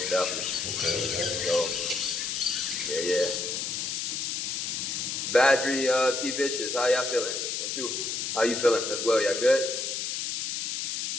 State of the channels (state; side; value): noise; left; hiss, 2 dB below the sound